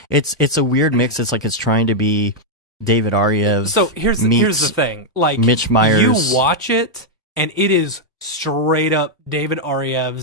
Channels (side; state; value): both; normal; correlation -0.03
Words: it's a weird mix. It's it's trying to be David Ariev. So here's the thing. Mitch Myers. You watch it and it is straight up David